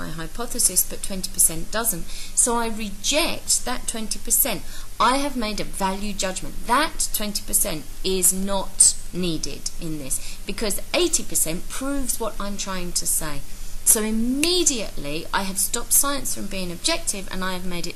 hypothesis, but 20% doesn't. So I reject that 20%. I have made a value judgment. That 20% is not needed in this, because 80% proves what I'm trying to say. So immediately I have stopped science from being objective, and I have made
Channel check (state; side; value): identical; both; correlation 1.00